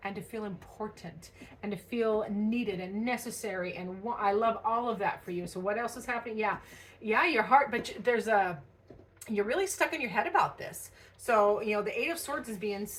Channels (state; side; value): identical; both; correlation 1.00